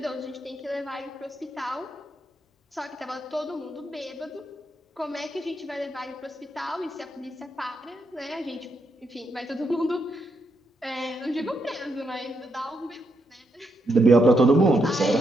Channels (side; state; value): both; normal; correlation 0.80